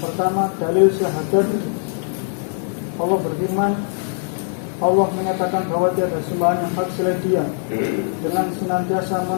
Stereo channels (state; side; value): silent; right; 65 dB below the other